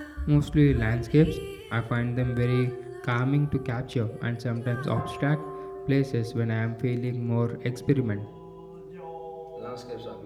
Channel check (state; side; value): identical; both; correlation 1.00